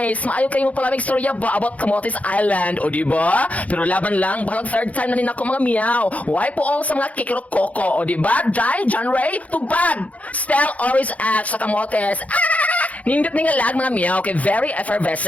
Maayo kayo mo palamig storya ba about Camotes Island. O diba? Pero laban lang, balang third time na rin ako mga meow. Why po all sa mga kikiro koko. O diba? Jai, John Ray, tubag. Spell always at sa Camotes. Nindot nga lag mga meow kay very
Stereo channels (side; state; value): right; late; 0.069 ms